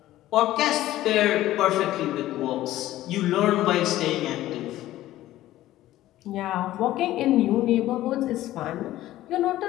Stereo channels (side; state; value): right; quieter; 14.9 dB